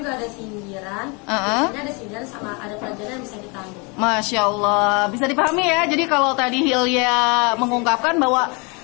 ada sindiran. Biasanya ada sindiran sama ada pelajaran yang bisa kita ambil. Masya Allah, bisa dipahami ya. Jadi kalau tadi Hilya mengungkapkan bahwa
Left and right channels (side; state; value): right; quieter; 30.9 dB